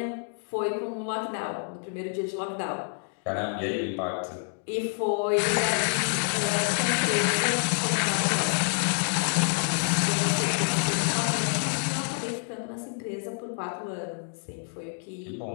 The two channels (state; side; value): silent; right; 59 dB below the other